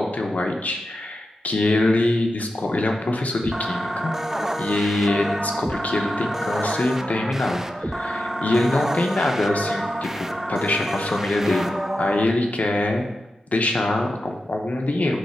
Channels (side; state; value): both; normal; correlation 0.90